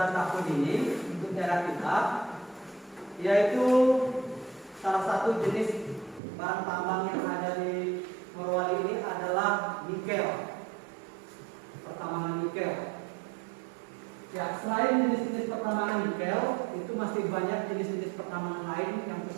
tahun ini untuk daerah kita, yaitu salah satu jenis bahan tambang yang ada di Morowali ini adalah nikel, pertambangan nikel. Ya, selain jenis-jenis pertambangan nikel, itu masih banyak jenis-jenis pertambangan lain yang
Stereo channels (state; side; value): drops out; left; at 6.2 s